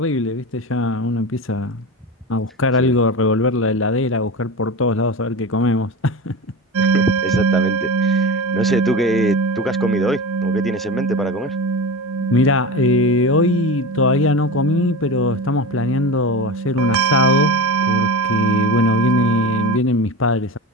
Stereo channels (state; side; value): normal; both; correlation 0.26